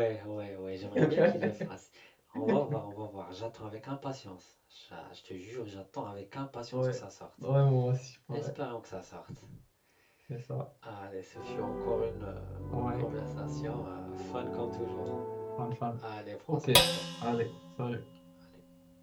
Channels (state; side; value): identical; both; correlation 1.00